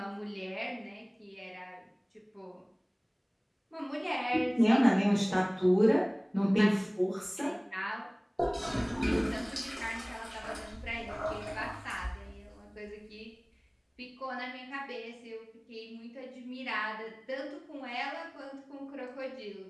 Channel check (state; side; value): identical; both; correlation 1.00